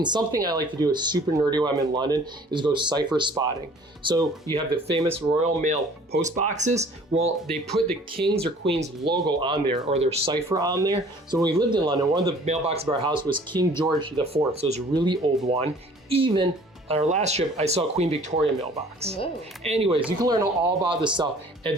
something I like to do is super nerdy when I'm in London is go cipher spotting. So you have the famous Royal Mail post boxes. Well, they put the King's or Queen's logo on there or their cipher on there. So when we lived in London, one of the mailboxes of our house was King George IV. So it was a really old one. Even on our last trip, I saw Queen Victoria mailbox. Whoa. Anyways, you can learn all about this stuff at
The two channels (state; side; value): normal; both; correlation 0.52